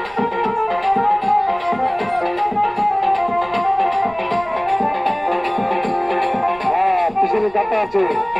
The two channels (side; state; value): right; noise; rumble, 24 dB below the sound